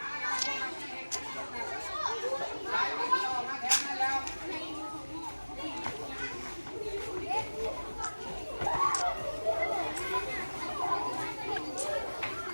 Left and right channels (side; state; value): both; inverted; correlation -1.00